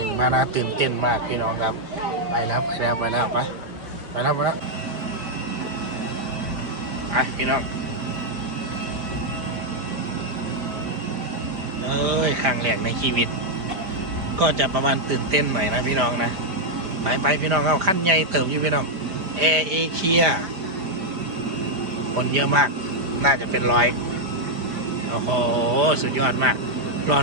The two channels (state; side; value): late; left; 4.9 ms